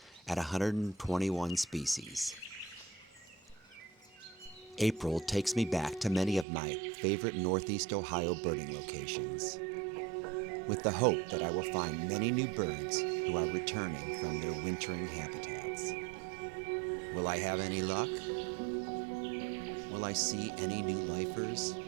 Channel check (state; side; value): drops out; left; at 6.5 s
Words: at 121 species. April takes me back to many of my favorite Northeast Ohio birding locations, with the hope that I will find many new birds who are returning from their wintering habitats. Will I have any luck? Will I see any new lifers?